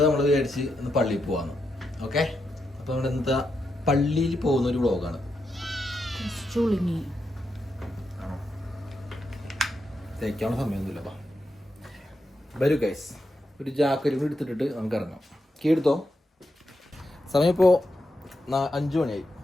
നമ്മൾ വിചാരിച്ച് ഇന്ന് പള്ളിയിൽ പോവാന്ന്. ഓക്കെ, അപ്പം നമ്മുടെ ഇന്നത്തെ പള്ളിയിൽ പോകുന്ന ഒരു വ്ളോഗാണ്. തേക്കാനുള്ള സമയമൊന്നുമില്ല. വരൂ ഗൈസ്, ഒരു ജാക്കറ്റ് കൂടി എടുത്തിട്ടിട്ട് നമുക്ക് ഇറങ്ങാം. കീ എടുത്തോ. സമയം ഇപ്പോൾ 5 മണിയായി.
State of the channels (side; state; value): both; normal; correlation 0.85